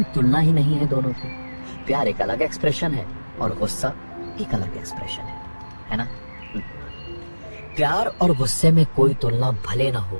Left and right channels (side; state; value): both; inverted; correlation -1.00